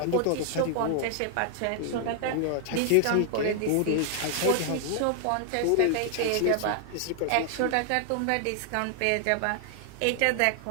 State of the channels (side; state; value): both; different; correlation 0.00